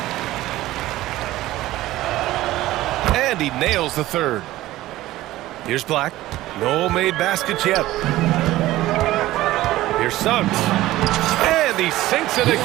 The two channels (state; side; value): quieter; left; 16.2 dB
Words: And he nails the third. Here's Black. No made baskets yet. Here's Suggs. And he sinks it